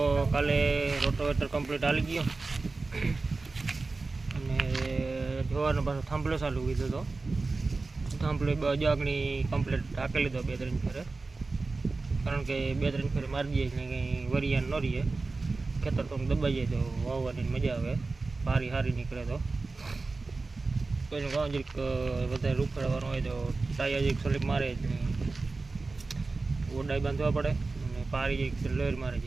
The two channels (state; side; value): quieter; left; 3.7 dB